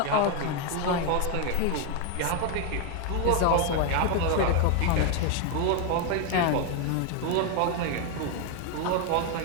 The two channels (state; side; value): different; both; correlation 0.01